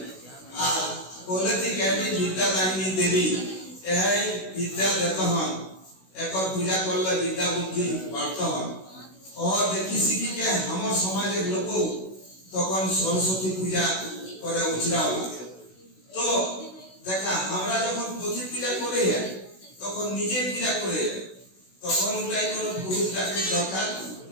আর বলেছি কেটি বিদ্যাদায়িনী দেবী এই বিদ্যা দেত হন একর পূজা করলে বিদ্যা বুদ্ধি বাড়ত হন ও দেখি শিখিকে আমার সমাজের লোক তখন সরস্বতী পূজা করে উচড়াও। তো দেখা আমরা যখন পথি পূজা করে তখন নিজে পূজা করে তখন ওটাই কোনো পুরুষ ডাকের দরকার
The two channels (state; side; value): late; right; 16 ms